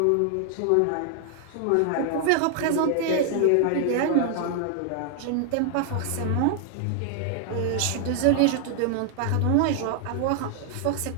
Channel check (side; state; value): both; different; correlation 0.00